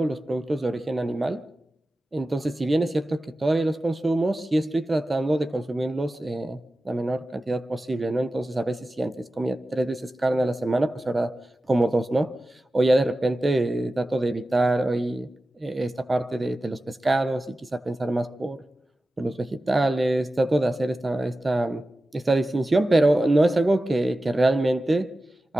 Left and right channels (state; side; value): normal; both; correlation 0.94